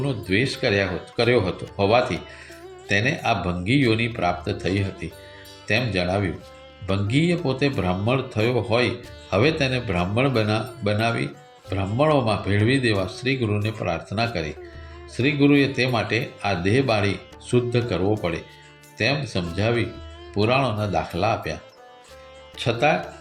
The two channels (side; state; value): both; identical; correlation 1.00